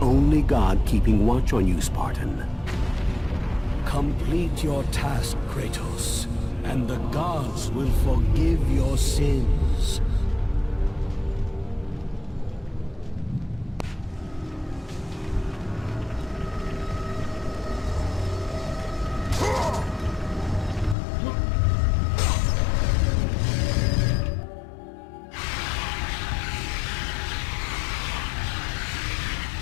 god keeping watch on you, Spartan. Complete your task, Kratos, and the gods will forgive your sins.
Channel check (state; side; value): drops out; right; at 21.0 s